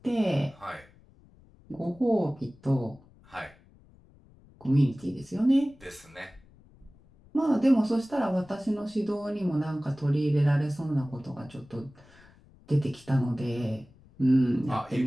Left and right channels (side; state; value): left; noise; rumble, 27 dB below the sound